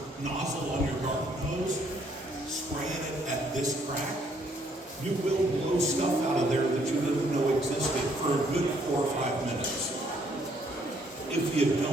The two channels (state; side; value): normal; both; correlation 0.67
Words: nozzle on your garden hose, spraying it at this crack, you will blow stuff out of there that you didn't know existed for a good 4 or 5 minutes. If you